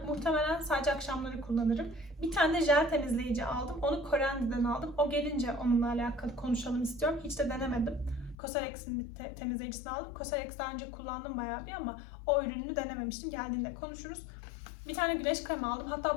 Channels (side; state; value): right; drops out; at 8.3 s